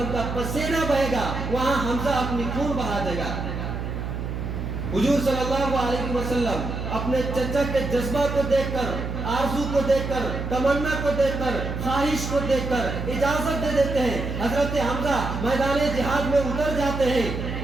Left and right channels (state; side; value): noise; right; hum, 4 dB below the sound